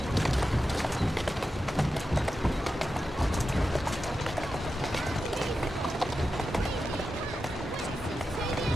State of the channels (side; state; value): both; normal; correlation 0.90